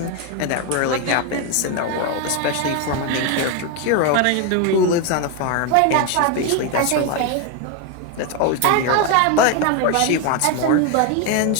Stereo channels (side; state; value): both; different; correlation 0.02